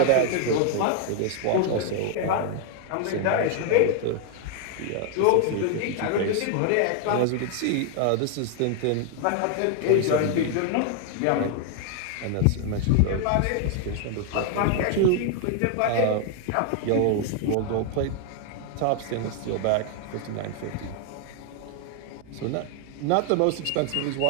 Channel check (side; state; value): both; different; correlation 0.00